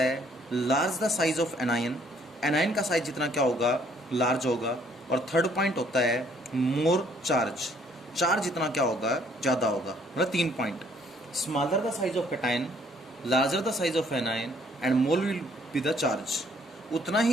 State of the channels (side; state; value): both; normal; correlation 0.64